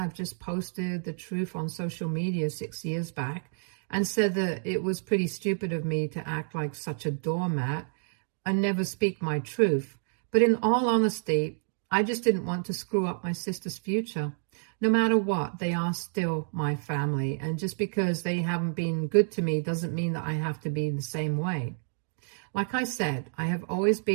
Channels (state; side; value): silent; left; digital silence